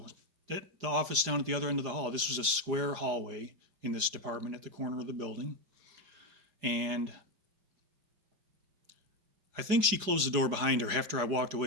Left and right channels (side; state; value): left; late; 4.9 ms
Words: at the office down at the other end of the hall." This was a square hallway in this department at the corner of the building. And I think she closed the door behind her after I walked